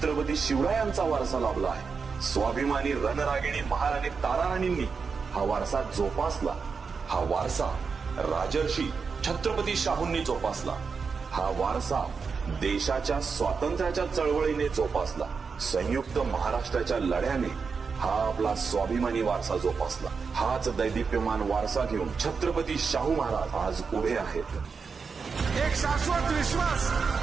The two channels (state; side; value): quieter; left; 5.3 dB